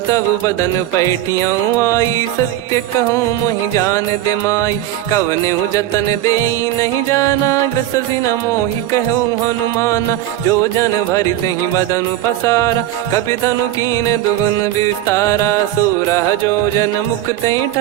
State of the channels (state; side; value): quieter; left; 13.6 dB